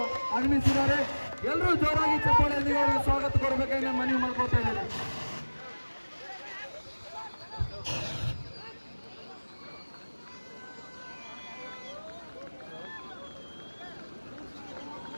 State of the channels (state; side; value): inverted; both; correlation -1.00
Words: ಆಗಮಿಸಿದ್ದಾರೆ. ಎಲ್ಲರೂ ಜೋರಾಗಿ ಚಪ್ಪಾಳೆಯೊಂದಿಗೆ ಅವರಿಗೆ ಸ್ವಾಗತ ಕೊಡಬೇಕಾಗಿ ನಾನು ಮನವಿ ಮಾಡ್ಕೊಳ್ತಾ ಇದ್ದೇನೆ.